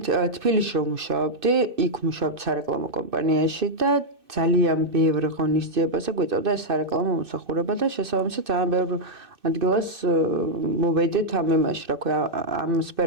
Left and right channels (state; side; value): late; left; 2.6 ms